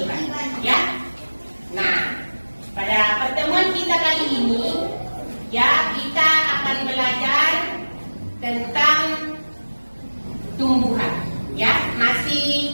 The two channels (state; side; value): inverted; both; correlation -1.00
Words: ya. Nah, pada pertemuan kita kali ini ya, kita akan belajar tentang tumbuhan ya, masih